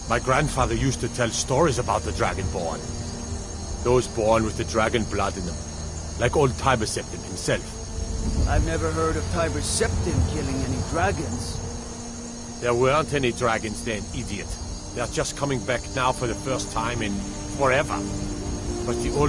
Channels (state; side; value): identical; both; correlation 1.00